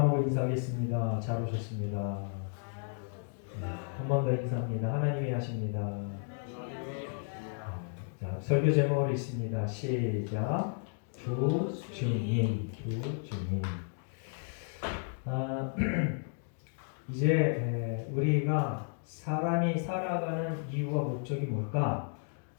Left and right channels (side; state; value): right; silent; 56 dB below the other